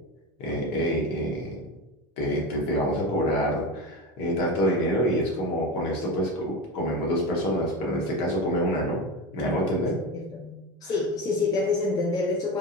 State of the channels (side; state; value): both; normal; correlation 0.23